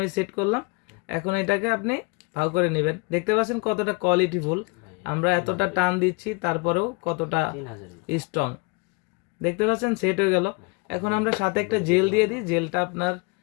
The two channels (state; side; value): quieter; right; 29.5 dB